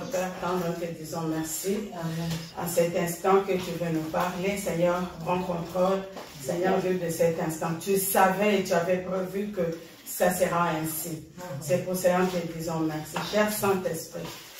Père, tendre, nous te disons merci. Amen. À cet instant que tu veux nous parler, Seigneur, prends contrôle. Seigneur Dieu, de cet instant, tu savais et tu avais prévu que ça sera ainsi. C'est pour cela que nous te disons merci. Cher Saint-Esprit,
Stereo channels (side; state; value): both; identical; correlation 1.00